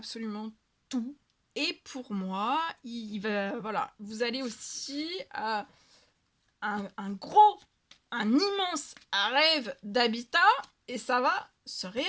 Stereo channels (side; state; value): both; identical; correlation 1.00